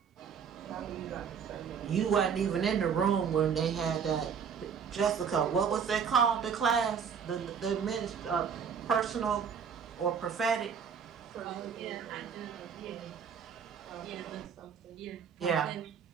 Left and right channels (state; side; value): quieter; left; 7.0 dB